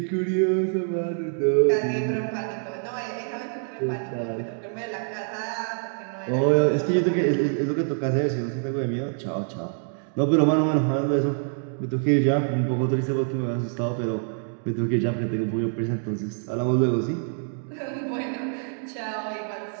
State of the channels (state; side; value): silent; left; 58 dB below the other